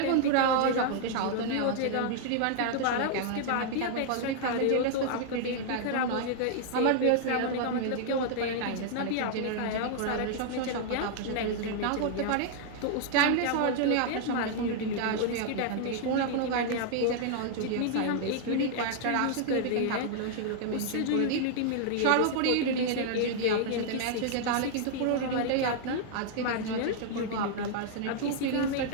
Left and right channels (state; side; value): different; both; correlation -0.01